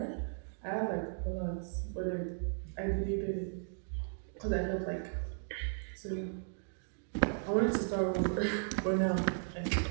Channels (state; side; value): silent; left; digital silence